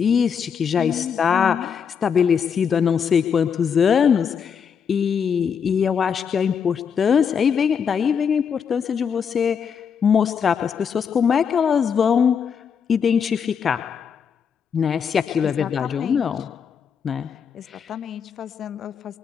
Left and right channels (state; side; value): quieter; right; 7.0 dB